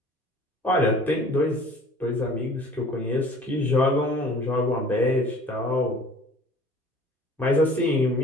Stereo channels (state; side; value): normal; both; correlation 0.49